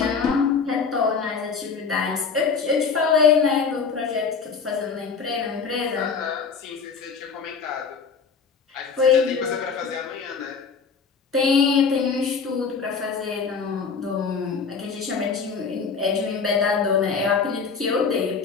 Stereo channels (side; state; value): right; quieter; 5.5 dB